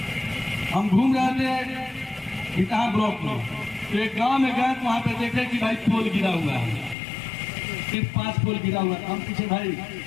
हम घूम रहे थे बिकहा ब्लॉक में, तो एक गांव में गए तो वहां पे देखे कि भाई पोल गिरा हुआ है, सिर्फ 5 पोल गिरा हुआ है। हम पूछे भाई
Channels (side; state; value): right; drops out; at 7.0 s